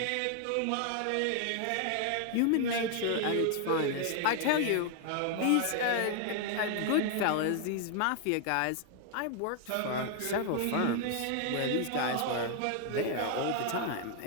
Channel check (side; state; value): both; different; correlation 0.00